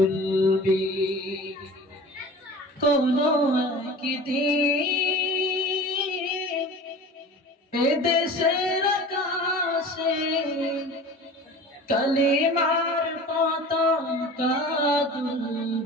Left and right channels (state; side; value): normal; both; correlation 0.39